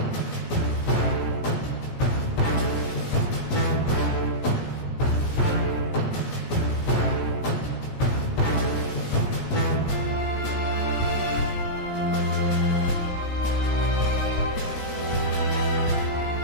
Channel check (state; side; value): late; right; 17 ms